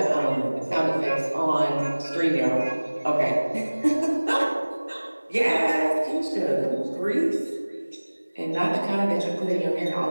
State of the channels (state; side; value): inverted; both; correlation -1.00